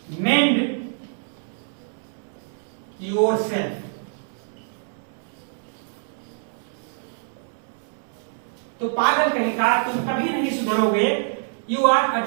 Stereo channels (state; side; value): silent; left; 62 dB below the other